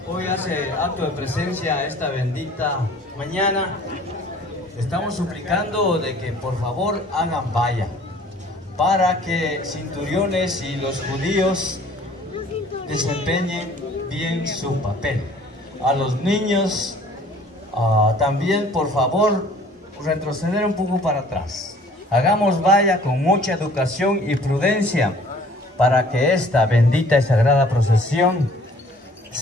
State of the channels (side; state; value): both; normal; correlation 0.53